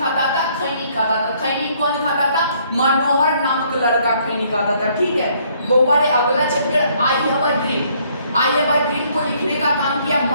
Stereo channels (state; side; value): inverted; both; correlation -0.65